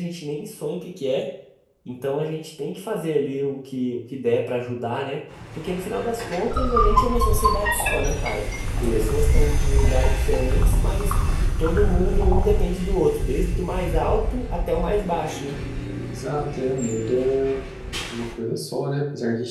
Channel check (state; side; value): identical; both; correlation 1.00